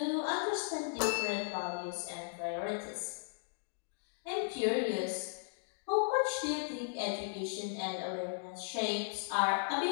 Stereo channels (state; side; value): silent; right; digital silence